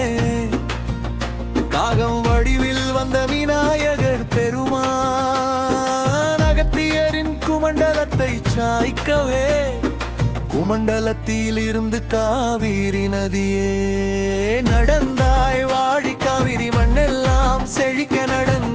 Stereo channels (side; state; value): both; identical; correlation 1.00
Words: காகம் வடிவில் வந்த விநாயகர் பெருமான் அகத்தியரின் குமண்டலத்தை சாய்க்கவே குமண்டலத்தில் இருந்து காவிரி நதியே நடந்தாய் வாழி காவிரி மண்ணெல்லாம் செழிக்க